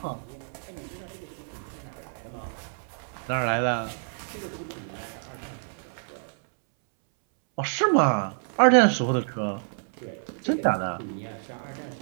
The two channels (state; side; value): silent; left; 59 dB below the other